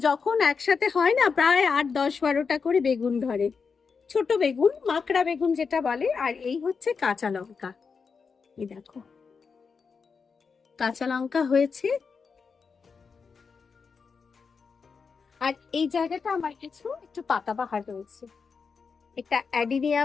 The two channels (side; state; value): right; quieter; 5.4 dB